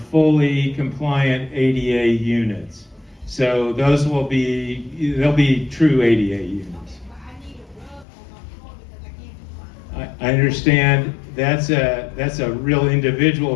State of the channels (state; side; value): drops out; right; at 8.1 s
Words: fully compliant ADA units. So those they'll be true ADA units. I understand that's a real individual